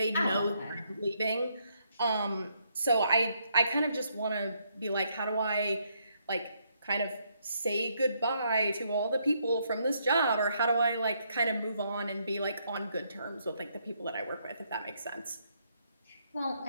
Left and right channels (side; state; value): both; inverted; correlation -0.74